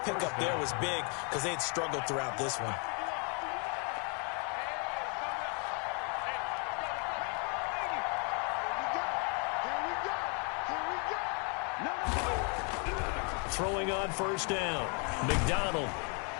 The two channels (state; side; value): quieter; right; 36.9 dB